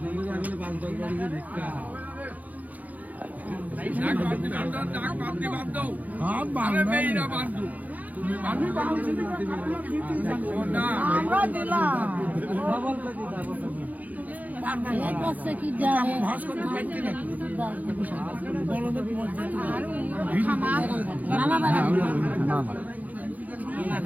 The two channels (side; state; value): left; late; 0.078 ms